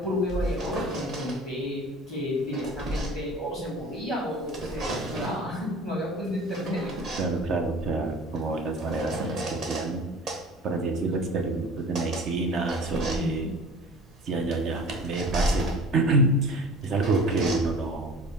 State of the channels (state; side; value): normal; both; correlation 0.42